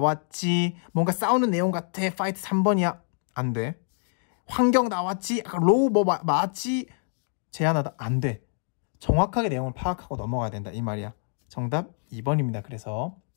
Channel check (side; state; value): right; silent; 61 dB below the other